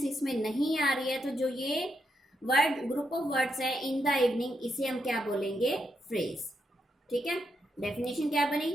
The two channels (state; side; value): normal; both; correlation 0.81